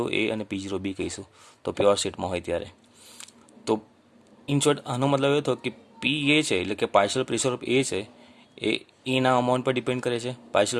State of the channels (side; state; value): both; identical; correlation 1.00